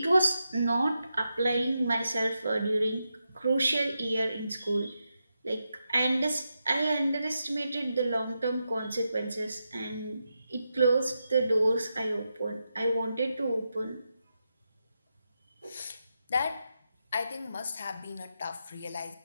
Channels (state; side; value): inverted; both; correlation -0.87